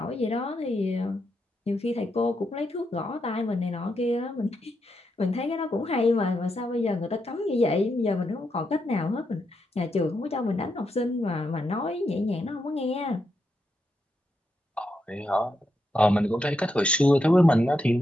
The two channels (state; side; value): normal; both; correlation 0.83